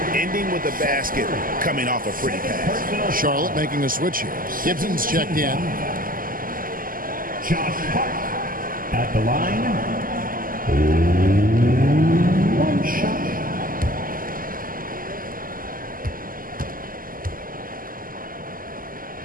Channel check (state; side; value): late; left; 0.41 ms